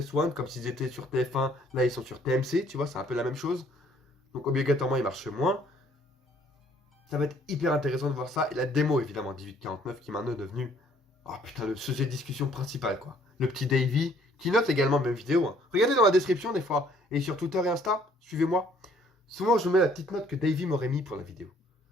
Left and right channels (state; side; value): normal; both; correlation 0.62